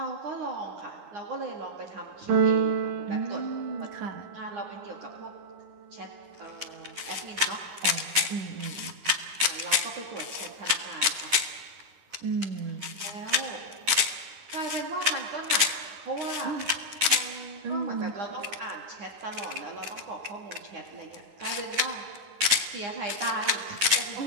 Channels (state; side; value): late; left; 9.6 ms